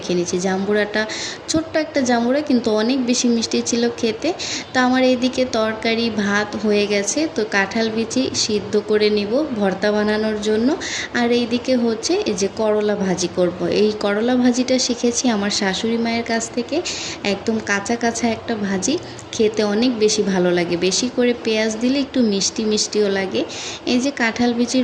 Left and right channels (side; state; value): both; identical; correlation 1.00